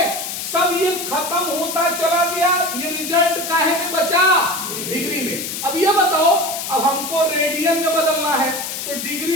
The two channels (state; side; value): noise; left; hiss, 5 dB below the sound